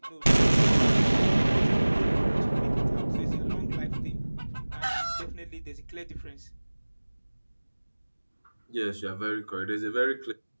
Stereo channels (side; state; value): both; inverted; correlation -1.00